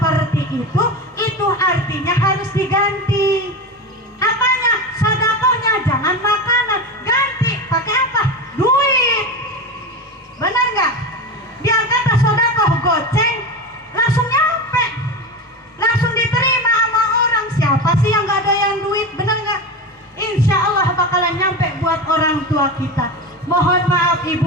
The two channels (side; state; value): both; normal; correlation 0.23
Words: itu artinya harus diganti. Apanya? Sodakohnya jangan makanan, ganti pakai apa? Duit. Benar nggak? Biar kata sodakoh goceng langsung nyampe, langsung diterima sama orang. Siapa sih yang nggak ada yang duit? Benar nggak? Insya Allah bakalan nyampe buat orang tua kita. Mohon maaf